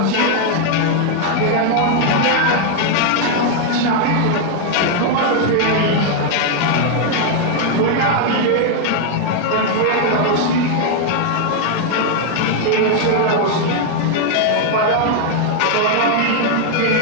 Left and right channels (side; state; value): both; different; correlation 0.00